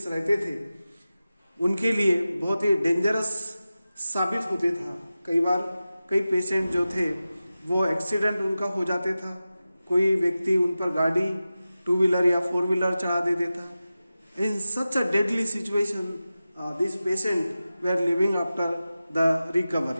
रहते थे, उनके लिए बहुत ही डेंजरस साबित होते था। कई बार कई पेशेंट जो थे वो एक्सीडेंट उनका हो जाते था, कोई व्यक्ति उन पर गाड़ी 2 व्हीलर या 4 व्हीलर चढ़ा देते था। In such a deadly situation this patient were living after the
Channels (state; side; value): inverted; both; correlation -0.94